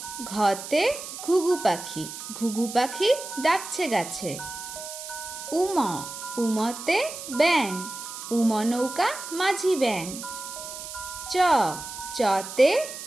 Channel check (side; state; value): right; noise; hiss, 10 dB below the sound